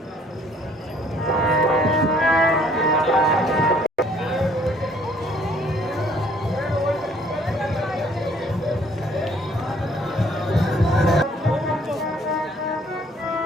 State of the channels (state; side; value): normal; both; correlation 0.60